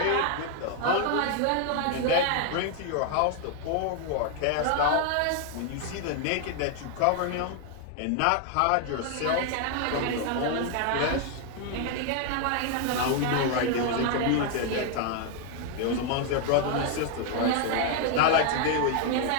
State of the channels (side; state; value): both; different; correlation 0.00